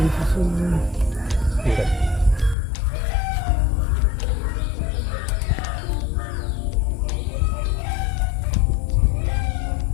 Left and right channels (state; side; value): drops out; right; at 2.6 s